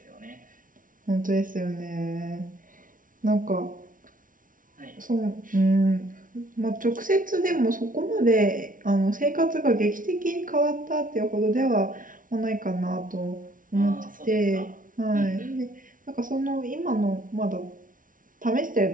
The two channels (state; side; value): late; left; 0.39 ms